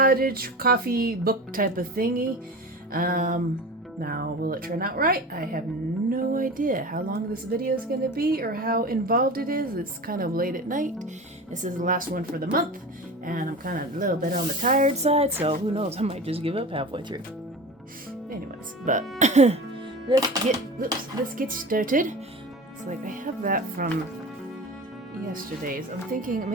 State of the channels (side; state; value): both; normal; correlation 0.32